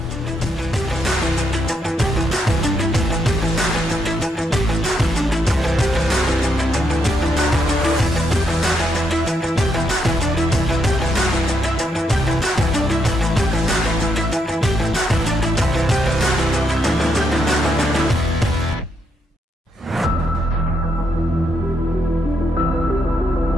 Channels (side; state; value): both; normal; correlation 0.78